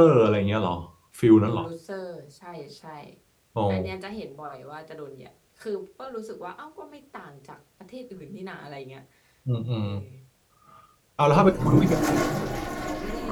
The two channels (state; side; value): identical; both; correlation 1.00